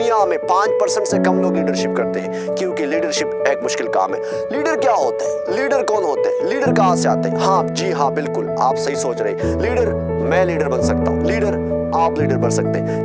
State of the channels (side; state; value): both; identical; correlation 1.00